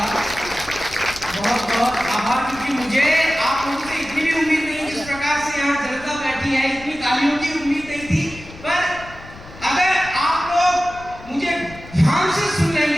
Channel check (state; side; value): noise; left; rumble, 18 dB below the sound